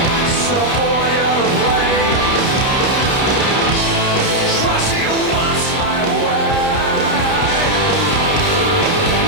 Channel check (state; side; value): late; right; 30 ms